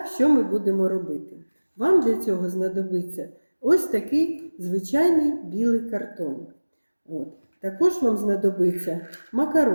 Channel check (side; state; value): both; inverted; correlation -1.00